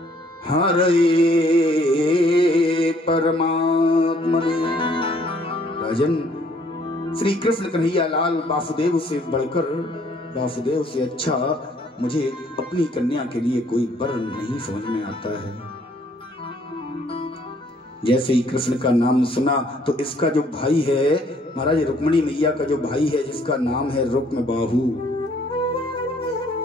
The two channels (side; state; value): both; normal; correlation 0.63